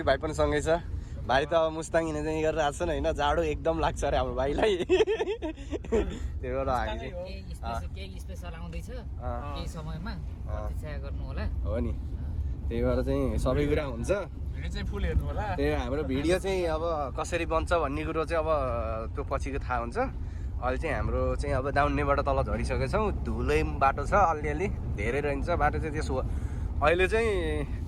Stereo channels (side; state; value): both; identical; correlation 1.00